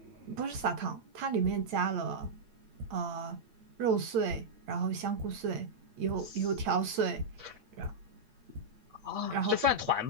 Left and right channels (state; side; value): late; left; 8.8 ms